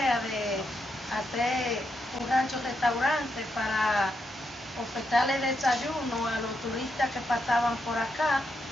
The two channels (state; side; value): normal; both; correlation 0.82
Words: de hacer un rancho-restaurante para ofertarle desayuno a los turistas que pasaban por acá.